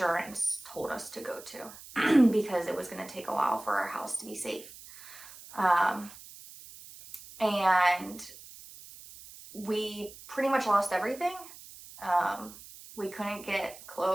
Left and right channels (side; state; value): right; noise; hiss, 17 dB below the sound